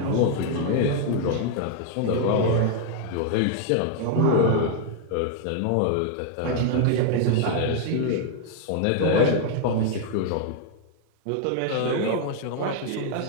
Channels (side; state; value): both; different; correlation 0.00